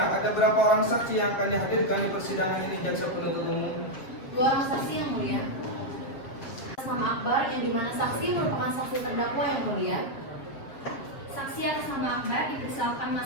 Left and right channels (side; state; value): right; late; 7.7 ms